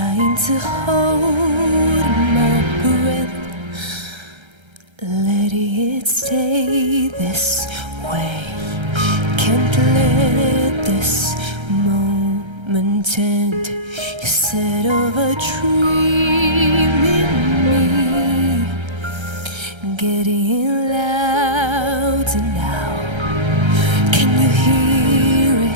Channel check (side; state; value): left; late; 1.3 ms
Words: to hold my breath, letting it stay this way. Can't let this moment end. You set of a dream in me, getting louder now. Can you hear